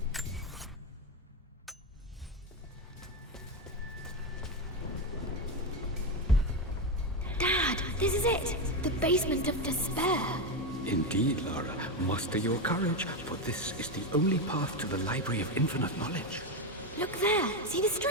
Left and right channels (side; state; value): both; normal; correlation 0.11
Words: Dad, this is it! The basement of despair. Indeed, Lara. Muster your courage, for this is the only path to the Library of Infinite Knowledge. Look there! See the